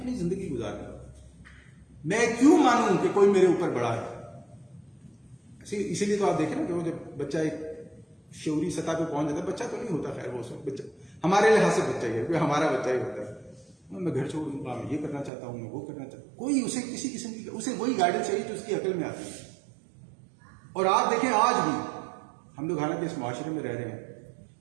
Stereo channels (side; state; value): left; drops out; at 15.3 s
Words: زندگی گزار رہا ہوں، میں کیوں مانوں کہ کوئی میرے اوپر بڑا ہے؟ اسی لیے تو آپ دیکھیں نا کہ وہ جب بچہ ایک شعوری سطح پہ پہنچ جاتا ہے، بچہ تو نہیں ہوتا، خیر وہ سب بچہ ہمارے لحاظ سے بچہ ہی ہے، کوئی ہمارا بچہ ہی ہوتا ہے. میں گھر چھوڑ دوں گا، میں یہ کرنا چاہتا ہوں، میں وہ کرنا چاہتا ہوں. کوئی اسے کسی قسم کی اسے وہی گائیڈنس چاہیے جو اس کی عقل میں آتی ہے. اور آپ دیکھیں آج بھی ہم لوگ حالانکہ اس معاشرے میں رہ رہے ہیں